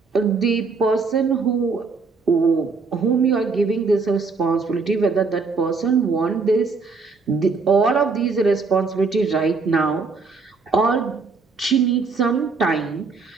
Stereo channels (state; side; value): quieter; left; 4.4 dB